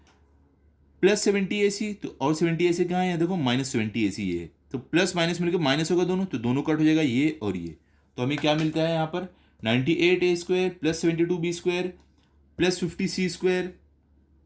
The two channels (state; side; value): identical; both; correlation 1.00